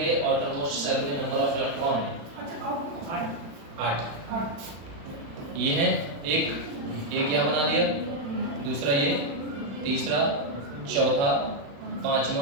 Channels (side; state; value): left; late; 35 ms